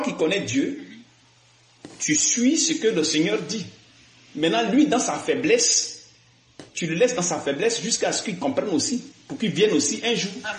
qui connais Dieu, tu suis ce que le Seigneur dit. Maintenant, lui, dans sa faiblesse, tu le laisses dans sa faiblesse jusqu'à ce qu'il comprenne aussi, pour qu'il vienne aussi un jour.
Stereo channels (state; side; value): identical; both; correlation 1.00